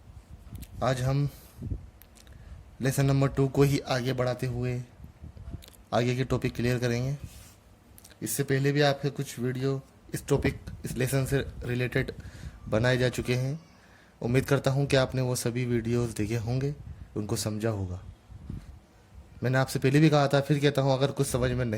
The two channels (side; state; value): both; identical; correlation 1.00